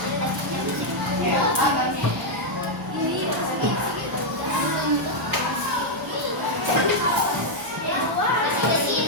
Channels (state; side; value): normal; both; correlation -0.02